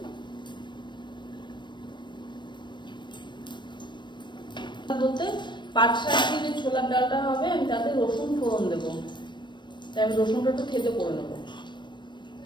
বলতে পাট শাক দিয়ে যে ছোলার ডালটা হবে, আমি তাতে রসুন ফোড়ন দেবো। তাই আমি রসুনটা একটু থেতো করে নেবো।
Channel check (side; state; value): right; late; 0.22 ms